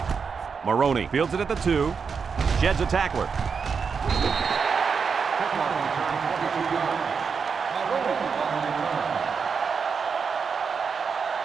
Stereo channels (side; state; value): left; quieter; 5.8 dB